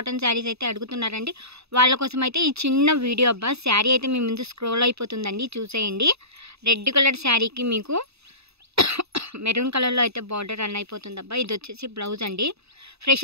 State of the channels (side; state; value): left; late; 0.79 ms